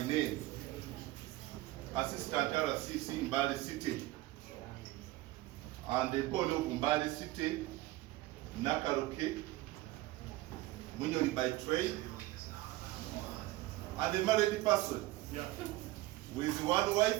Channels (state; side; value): quieter; left; 17.8 dB